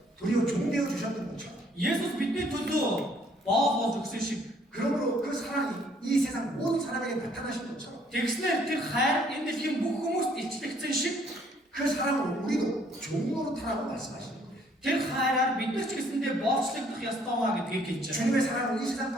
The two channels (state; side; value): normal; both; correlation 0.63